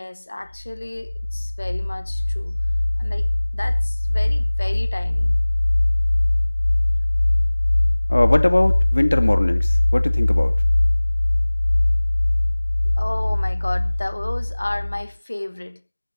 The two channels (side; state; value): both; inverted; correlation -1.00